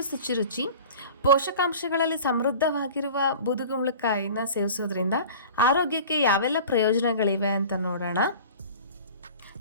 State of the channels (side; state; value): both; inverted; correlation -0.40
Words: ಶುಚಿರುಚಿ. ಪೋಷಕಾಂಶಗಳಲ್ಲಿ ಸಮೃದ್ಧವಾಗಿರುವ ಬೂದುಗುಂಬಳಕಾಯಿನ ಸೇವಿಸೋದ್ರಿಂದ ಆರೋಗ್ಯಕ್ಕೆ ಯಾವೆಲ್ಲ ಪ್ರಯೋಜನಗಳಿವೆ ಅಂತ ನೋಡೋಣ.